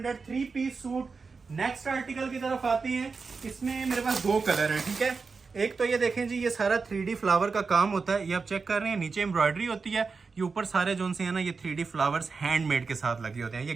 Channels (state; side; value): quieter; left; 4.7 dB